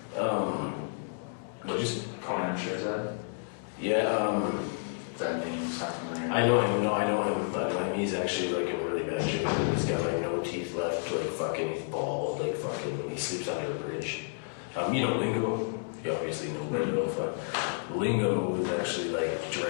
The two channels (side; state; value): right; silent; digital silence